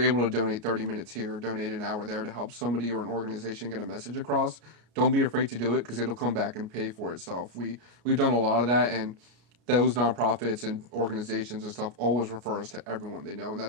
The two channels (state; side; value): late; left; 33 ms